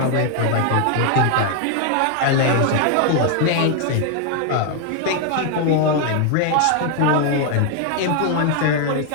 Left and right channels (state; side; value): different; both; correlation 0.00